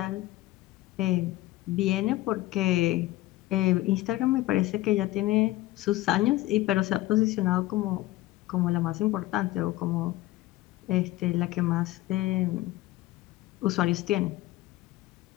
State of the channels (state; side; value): quieter; right; 17.1 dB